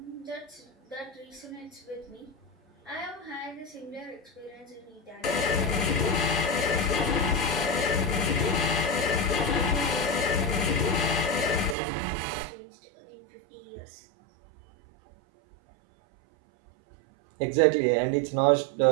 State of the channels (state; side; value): drops out; left; at 11.8 s